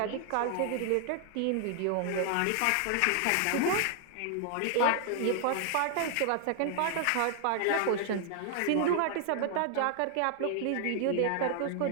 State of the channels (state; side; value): different; both; correlation 0.00